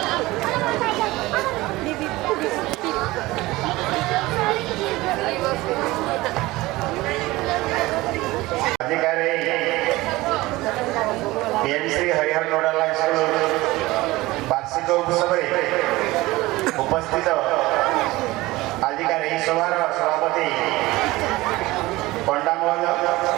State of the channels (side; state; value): left; quieter; 19.5 dB